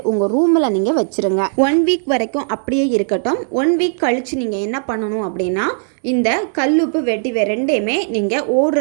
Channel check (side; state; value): left; silent; 68 dB below the other